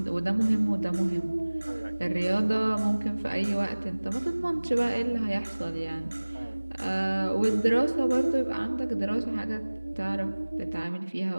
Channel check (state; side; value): inverted; both; correlation -1.00